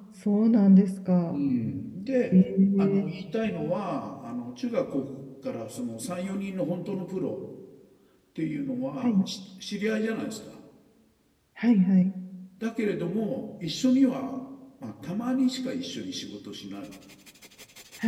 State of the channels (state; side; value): identical; both; correlation 1.00